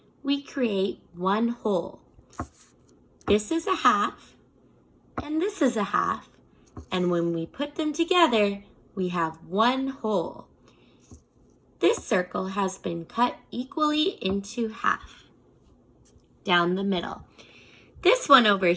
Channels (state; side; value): identical; both; correlation 1.00